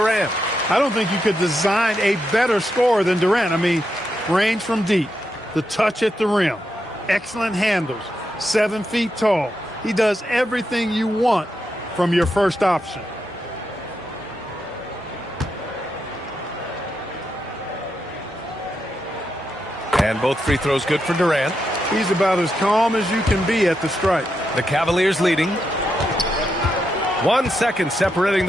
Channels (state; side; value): normal; both; correlation 0.84